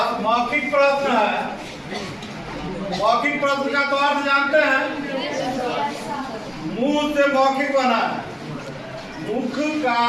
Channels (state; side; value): identical; both; correlation 1.00